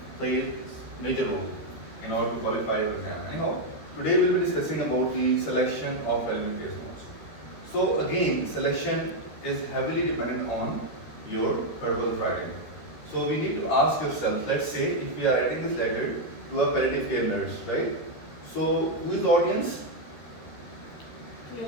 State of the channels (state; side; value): late; right; 13 ms